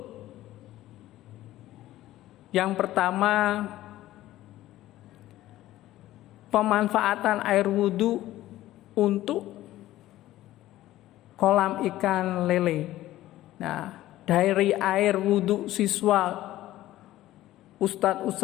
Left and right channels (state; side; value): quieter; right; 15.1 dB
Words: Yang pertama, pemanfaatan air wudhu untuk kolam ikan lele. Nah, dari air wudhu siswa, ustadz,